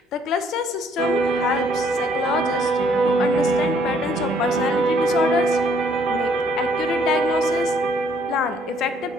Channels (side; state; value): both; normal; correlation 0.64